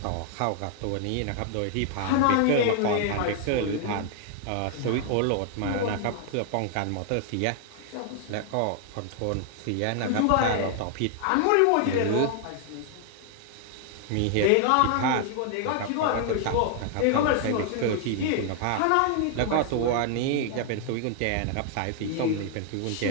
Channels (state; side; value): different; both; correlation 0.00